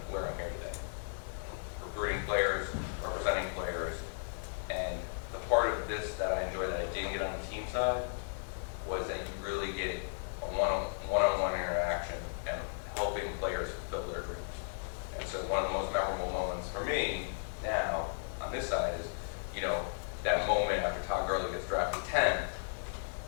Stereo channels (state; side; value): silent; right; digital silence